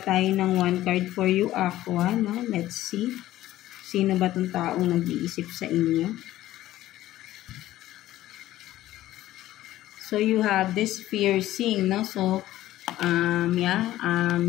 tayo ng 1 card for you, Aqua, no? Let's see. Sino ba itong taong nag-iisip sa inyo? So, you have this piercing, no? So,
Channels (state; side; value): quieter; right; 14.7 dB